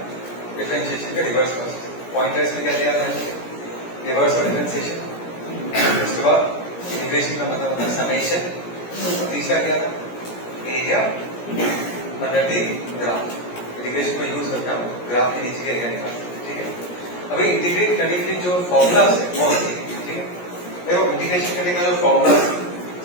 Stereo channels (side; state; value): right; late; 17 ms